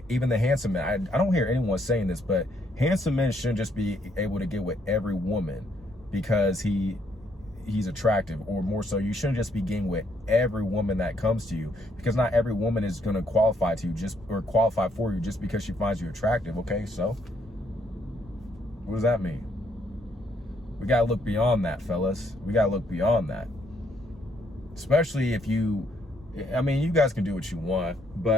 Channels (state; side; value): normal; both; correlation 0.71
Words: even the handsome men, I don't hear anyone saying this, but handsome men shouldn't just be able to get with every woman because he's attractive, or more so, you shouldn't just be getting with every woman that comes to you, because not every woman is going to qualify to you qualify for you just because she finds you attractive. Okay, so what does that mean? We got to look beyond that, fellas. We got to look beyond that. Especially if you, I mean, you guys can do what you want,